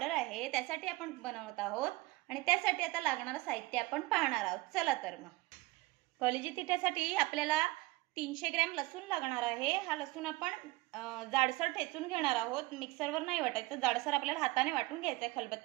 आहे, त्यासाठी आपण बनवत आहोत आणि त्यासाठी आता लागणारे साहित्य आपण पाहणार आहोत। चला तर मग कलेजी थिटासाठी आपल्याला 300 ग्रॅम लसूण लागणार आहे। हा लसूण आपण जाडसर ठेचून घेणार आहोत, मिक्सरवर नाही वाटायचं, जाडसर आपल्याला हाताने वाटून घ्यायचं आहे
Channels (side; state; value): left; quieter; 21.1 dB